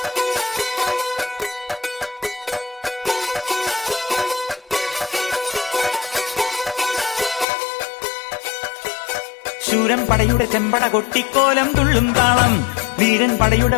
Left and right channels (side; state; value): right; drops out; at 7.5 s